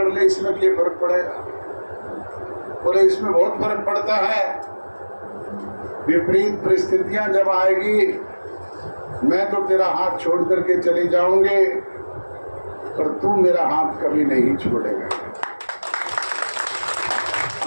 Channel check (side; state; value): both; inverted; correlation -1.00